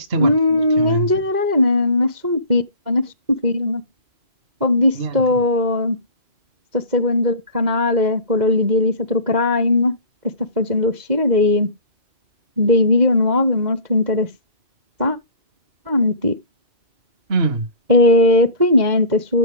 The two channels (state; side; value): late; left; 2.1 ms